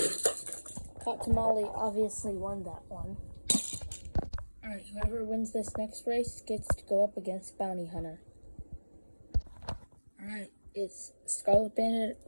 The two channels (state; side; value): inverted; both; correlation -1.00